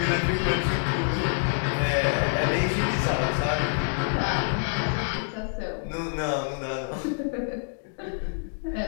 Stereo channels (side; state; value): right; silent; digital silence